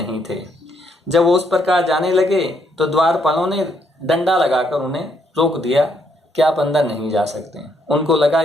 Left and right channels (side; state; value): both; normal; correlation 0.73